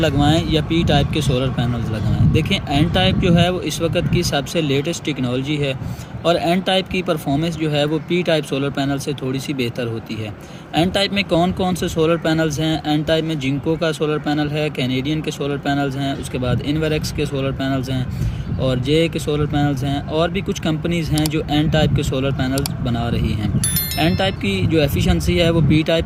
या पी टाइप के सोलर पैनल्स लगवाएं। देखिए, एन टाइप जो है वो इस वक्त की सबसे लेटेस्ट टेक्नोलॉजी है और एन टाइप की परफॉर्मेंस जो है वो पी टाइप सोलर पैनल से थोड़ी सी बेहतर होती है। एन टाइप में कौन कौन से सोलर पैनल्स हैं? एन टाइप में जिंको का सोलर पैनल है, कैनेडियन के सोलर पैनल्स हैं, उसके बाद इन्वेरेक्स के सोलर पैनल्स हैं और जे के सोलर पैनल्स हैं, और भी कुछ कंपनीज़ हैं जो एन टाइप के सोलर पैनल्स बना रही हैं। एन टाइप की जो एफिशिएंसी है वो पी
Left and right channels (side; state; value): both; identical; correlation 1.00